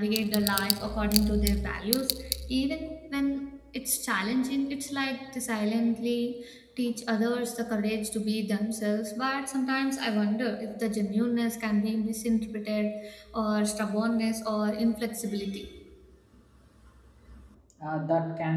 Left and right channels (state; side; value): identical; both; correlation 1.00